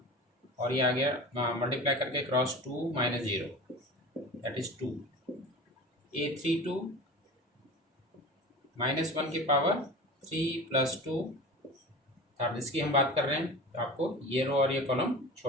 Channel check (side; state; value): both; normal; correlation 0.34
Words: और ये आ गया मल्टीप्लाई करके क्रॉस 2 -0 दैट इज 2. A32 -1 की पावर 3 + 2. अब इसकी हम बात कर रहे हैं. तो आपको ये रो और ये कॉलम